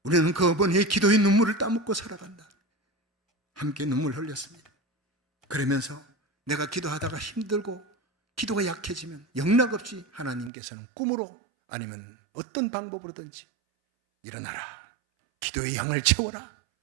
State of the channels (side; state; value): left; drops out; at 10.5 s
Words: 우리는 그 어머니의 기도의 눈물을 따먹고 살아간다. 함께 눈물 흘렸습니다. 그러면서 내가 기도하다가 힘들고 기도가 약해지면 영락없이 하나님께서는 꿈으로 아니면 어떤 방법으로든지 일어나라. 기도의 향을 채워라.